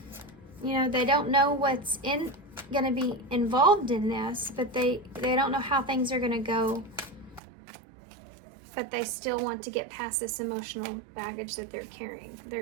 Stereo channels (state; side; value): drops out; left; at 7.4 s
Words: You know, they don't know what's going to be involved in this, but they don't know how things are going to go, but they still want to get past this emotional baggage that they're carrying.